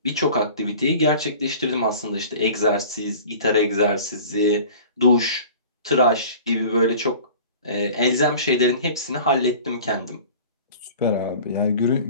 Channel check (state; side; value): inverted; both; correlation -0.42